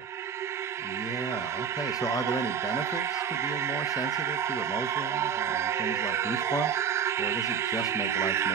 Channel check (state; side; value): quieter; left; 7.1 dB